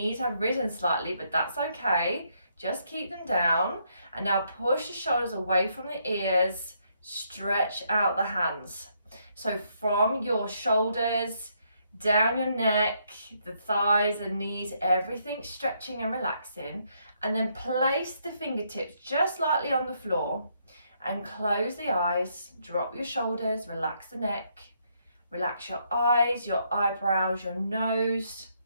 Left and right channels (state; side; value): inverted; both; correlation -0.74